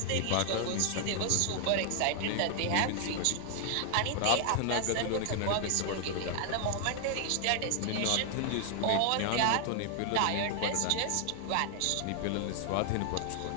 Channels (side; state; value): both; different; correlation 0.00